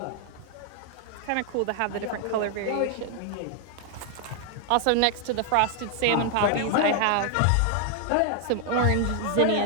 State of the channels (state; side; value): different; both; correlation 0.00